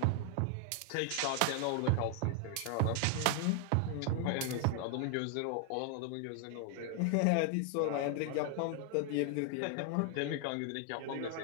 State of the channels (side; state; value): both; different; correlation 0.00